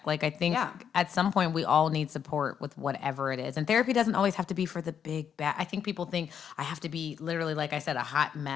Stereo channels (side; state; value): right; quieter; 8.0 dB